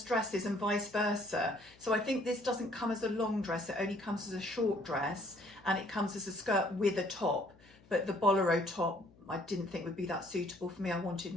dresses and vice versa. So I think this doesn't come as a long dress, it only comes as a short dress, and it comes as a skirt with a top. But the bolero top, I didn't think would be that suitable for me. I wanted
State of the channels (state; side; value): noise; left; hum, 26 dB below the sound